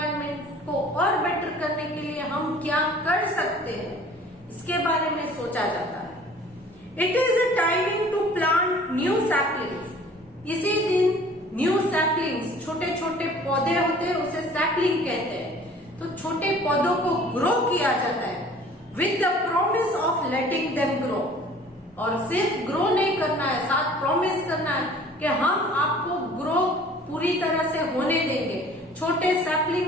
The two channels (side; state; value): both; normal; correlation 0.50